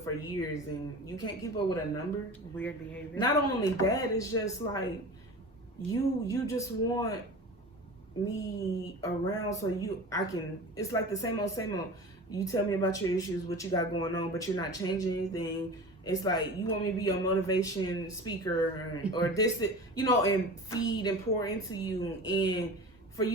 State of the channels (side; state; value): both; normal; correlation 0.35